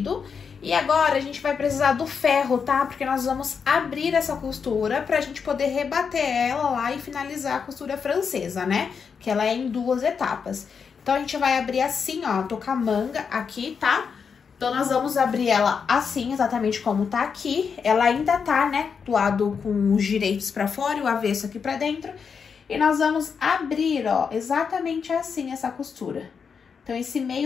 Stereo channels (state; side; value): quieter; right; 6.1 dB